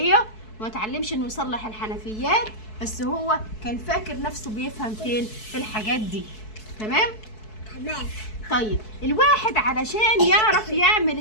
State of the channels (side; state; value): right; late; 4.6 ms